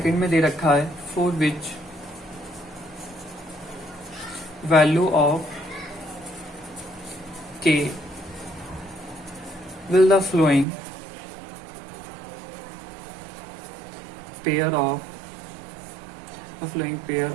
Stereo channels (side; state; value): left; drops out; at 10.7 s